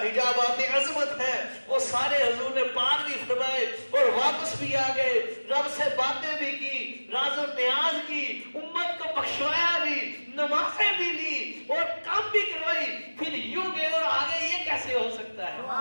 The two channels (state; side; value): inverted; both; correlation -1.00